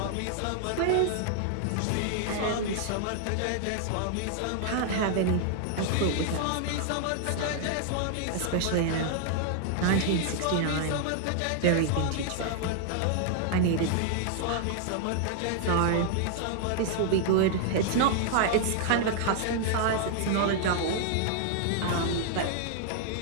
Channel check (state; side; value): different; both; correlation 0.00